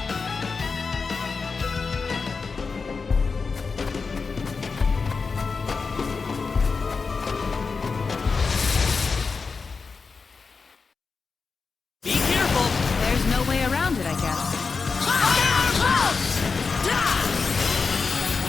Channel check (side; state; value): right; quieter; 4.8 dB